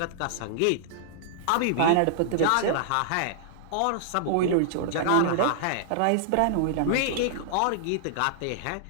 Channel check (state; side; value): different; both; correlation -0.01